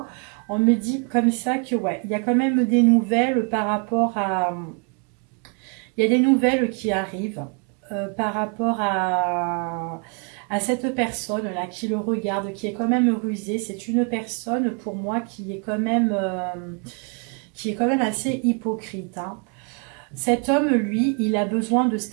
On me dit comme ça que ouais, il y a quand même des nouvelles par rapport à... Il y a des nouvelles qui arrivent par rapport à à cette personne-là qui le regarde, qui est quand même rusée. C'est une personne pour moi qui est quand même assez hypocrite, hein. Cet homme, lui, il a besoin de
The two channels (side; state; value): left; quieter; 36.7 dB